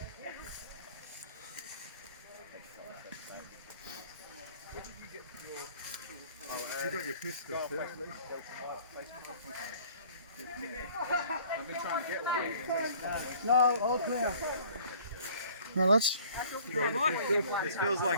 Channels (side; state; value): both; inverted; correlation -0.53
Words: You got your pistol, yeah? I've been trying to get one. No, all clear. Right, lads. This feels